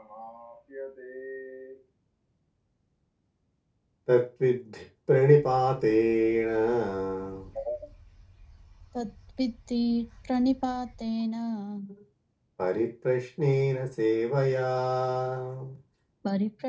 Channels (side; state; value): both; identical; correlation 1.00